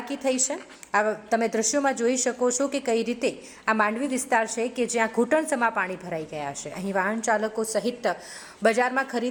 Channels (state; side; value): identical; both; correlation 1.00